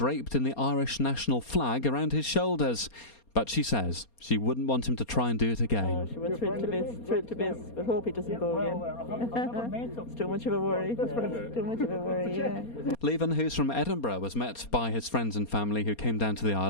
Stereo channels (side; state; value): right; late; 4.3 ms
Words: in the Irish national flag around his shoulders. But she says she wouldn't want him to try and do it again. Oh, she was thrilled to bits, but hope he doesn't go again. It's too much of a worry. It's too much of a worry, yeah. Leven, who's from Edinburgh, was met by his friends and family who came down to the